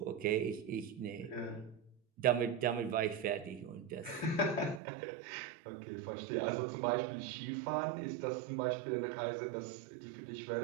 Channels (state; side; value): drops out; left; at 4.8 s